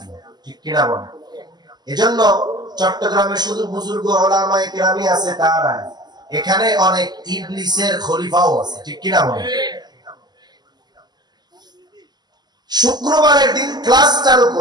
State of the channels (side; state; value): left; late; 0.20 ms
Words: ঠিক কিনা বলেন? এজন্য চট্টগ্রামে শুধু বুজুর্গ উলামায়ে কেরামি আছে তা না, এখানে অনেক ইবলিসের খলিফাও আছে, ঠিক কিনা বলেন? শুক্রবারের দিন ক্লাস চালু